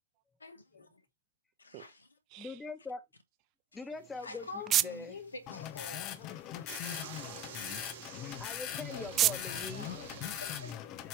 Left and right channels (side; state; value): left; quieter; 3.1 dB